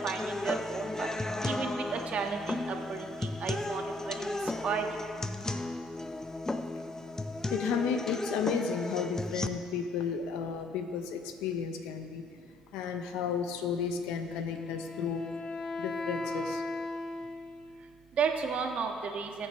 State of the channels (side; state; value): both; normal; correlation 0.63